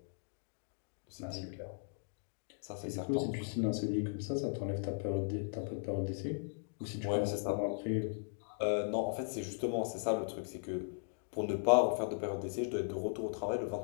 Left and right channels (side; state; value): right; silent; digital silence